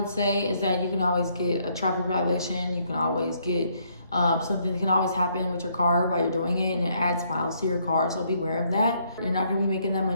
say is that you can always get a traffic violation. You can always get something that can always happen with your car while you're doing it, and it adds miles to your car. So be aware of that. You're not going to be making that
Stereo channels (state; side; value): inverted; both; correlation -0.70